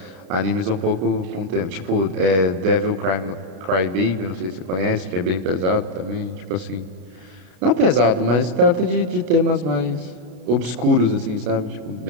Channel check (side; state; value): left; late; 33 ms